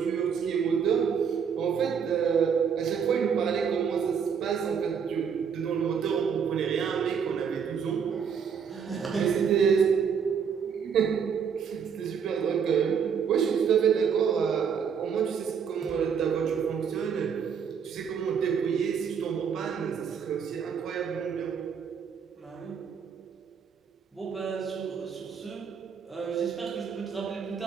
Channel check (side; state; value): left; quieter; 6.9 dB